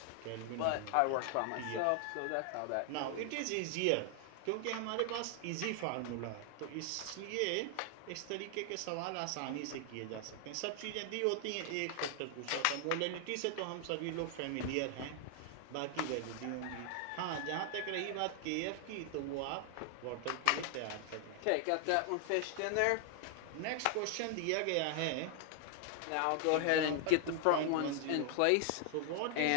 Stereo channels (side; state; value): both; different; correlation 0.00